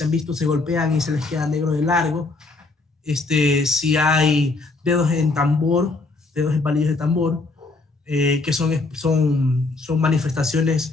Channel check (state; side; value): quieter; right; 3.4 dB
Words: han visto, se golpean y se les queda negro de largo. si hay dedos en tambor, dedos en palillos de tambor, que son